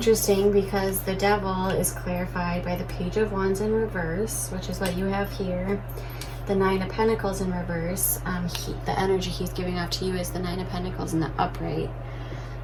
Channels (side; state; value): both; identical; correlation 1.00